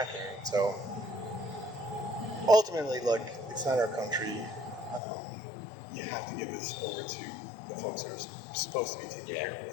So ultimately, look, it's not our country. You have to give this over to the folks that are supposed to be taking care of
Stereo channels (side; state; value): right; drops out; at 5.0 s